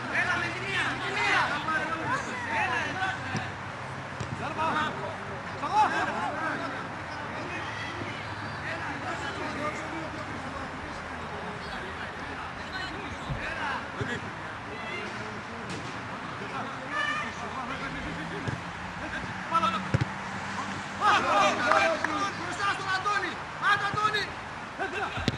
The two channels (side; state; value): both; identical; correlation 1.00